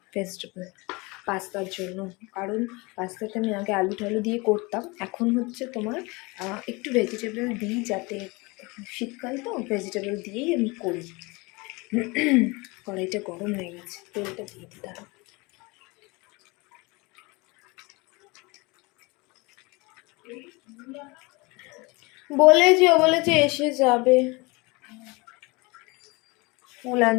ভেজিটেবল পাস্তার জন্য, কারণ পাস্তাটা আমি আগে আলু টালু দিয়ে করতাম, এখন হচ্ছে তোমার একটু ভেজিটেবল দিই, যাতে শীতকাল তো ভেজিটেবল দিয়েই আমি করি। কড়াইটা গরম হয়ে গেছে, তেলটা দিয়ে দিতে হবে। বলেছে এসে যাবে, ফুল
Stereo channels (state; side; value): quieter; right; 25.7 dB